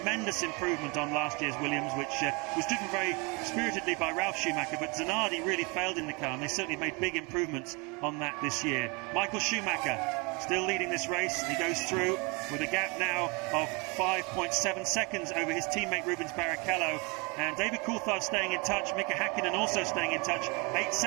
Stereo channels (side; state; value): left; quieter; 29.6 dB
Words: improvement on last year's Williams, which was driven very spiritedly by Ralf Schumacher, but Zanardi really failed in the car, and they certainly made big improvements on that this year. Michael Schumacher still leading this race. He goes through with a gap now of 5.7 seconds over his teammate Rubens Barrichello, and David Coulthard staying in touch, Mika Häkkinen also staying in touch. 8